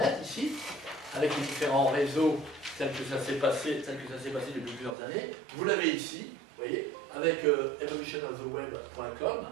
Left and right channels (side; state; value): left; drops out; at 5.0 s